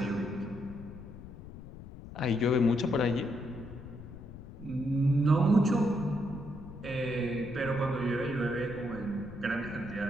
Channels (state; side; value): noise; left; rumble, 14 dB below the sound